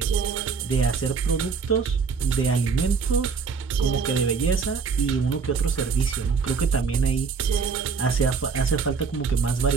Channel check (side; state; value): left; quieter; 5.4 dB